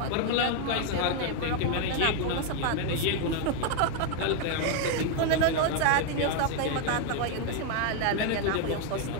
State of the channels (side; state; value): both; different; correlation 0.01